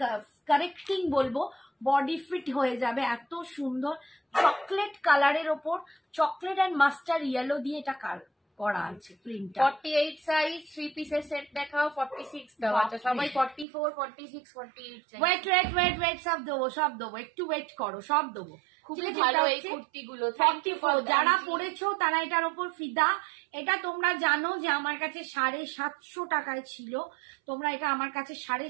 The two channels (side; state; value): left; drops out; at 13.7 s